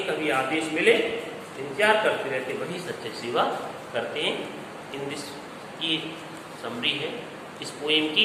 कभी आदेश मिले इंतजार करते रहते, वही सच्चे सेवा करते हैं. इन दिस की समरी है इस पोएम की.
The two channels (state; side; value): identical; both; correlation 1.00